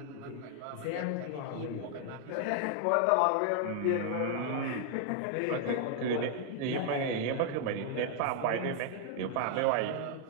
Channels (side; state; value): both; different; correlation 0.00